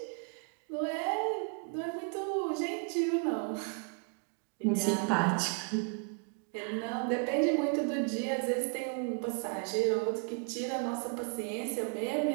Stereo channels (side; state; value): left; quieter; 39.0 dB